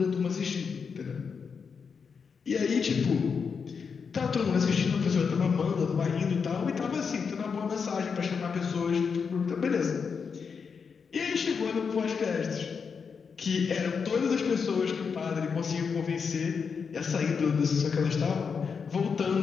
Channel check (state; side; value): quieter; right; 5.9 dB